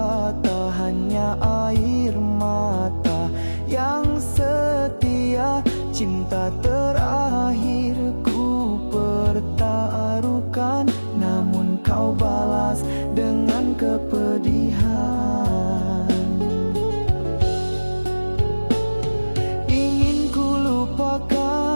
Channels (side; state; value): both; inverted; correlation -1.00